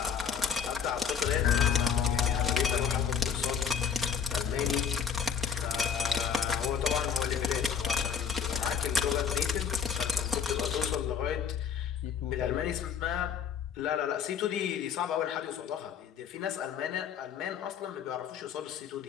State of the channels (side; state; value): right; quieter; 7.2 dB